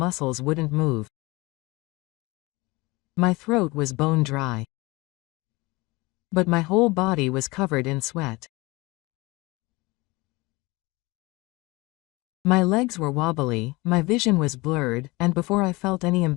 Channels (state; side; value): quieter; right; 23.3 dB